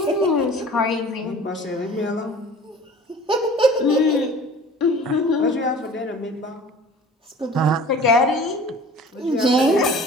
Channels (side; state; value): both; normal; correlation 0.45